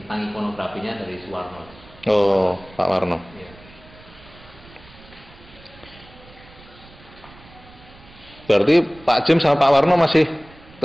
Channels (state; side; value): noise; right; rumble, 23 dB below the sound